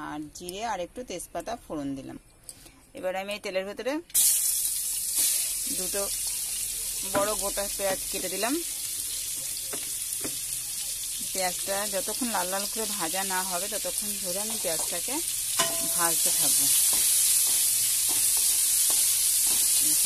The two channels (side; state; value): both; identical; correlation 1.00